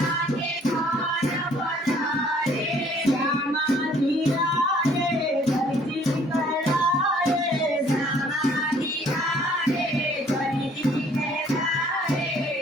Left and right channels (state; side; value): normal; both; correlation 0.60